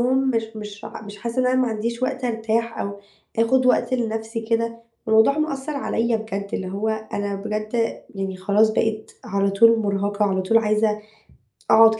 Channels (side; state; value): both; identical; correlation 1.00